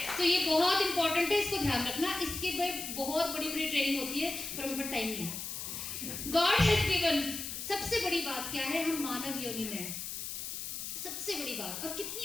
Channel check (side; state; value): left; noise; hiss, 6 dB below the sound